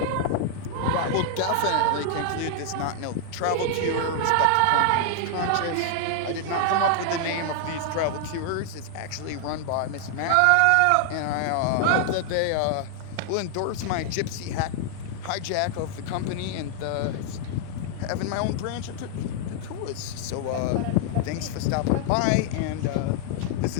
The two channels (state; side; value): different; both; correlation 0.00